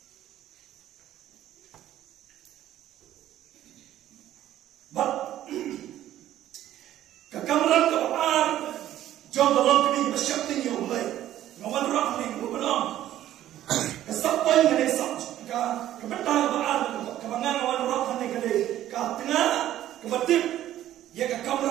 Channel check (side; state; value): left; quieter; 12.8 dB